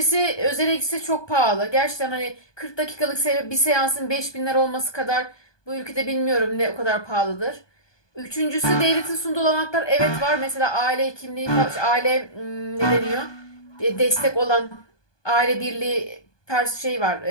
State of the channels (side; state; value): right; late; 1.2 ms